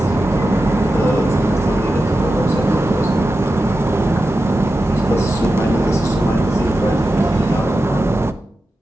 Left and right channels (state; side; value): normal; both; correlation 0.91